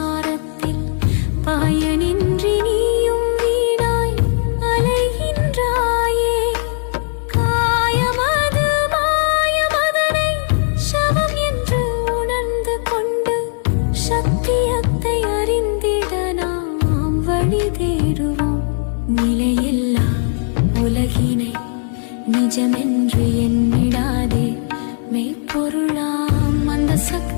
பயனின்றி நீயும் வீணாய் அலைகின்றாயே. காயமது மாயமதனை சவம் என்று உணர்ந்து கொண்டு சத்தியத்தை அறிந்திட நாம் வழி தேடுவோம். நிலையில்லா உலகினை நிஜமென்று எண்ணிடாதே. மெய்ப்பொருளாம் அந்த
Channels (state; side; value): silent; right; 66 dB below the other